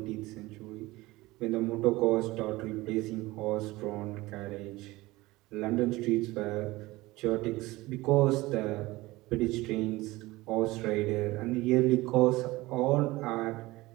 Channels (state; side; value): quieter; left; 19.9 dB